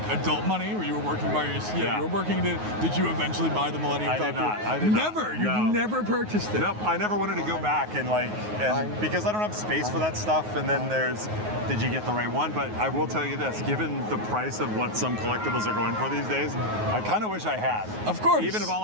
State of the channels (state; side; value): late; left; 9.4 ms